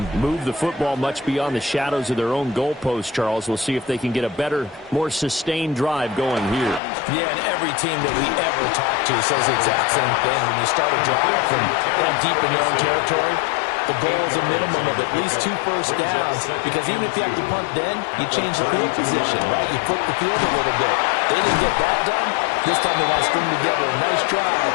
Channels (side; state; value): right; drops out; at 6.8 s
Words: move the football much beyond the shadows of their own goalpost, Charles. We'll see if they can get a better, more sustained drive going here. Yeah, and every team that we ever talk to says the exact same thing. When you start a drive from that deep in your own territory, the goal is a minimum of at least 2 first downs, because even if you have to punt then, you change the field position, right? You flip the field a little bit. They didn't get that done. This time they want to string together a nice drive